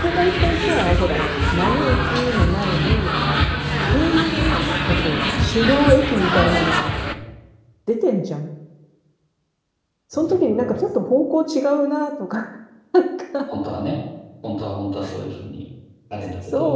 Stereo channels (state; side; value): identical; both; correlation 1.00